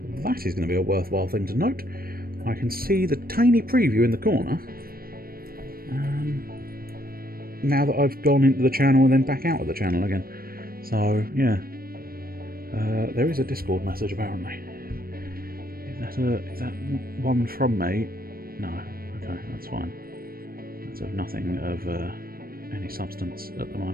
that is going to be a worthwhile thing to note. I can see the tiny preview in the corner. Now that I've gone into the channel and then back out of the channel again. So, yeah. There is a Discord message, apparently. Is that one from me? No. Okay, that's fine. That's of nothing of any substance at the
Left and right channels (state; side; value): late; left; 0.43 ms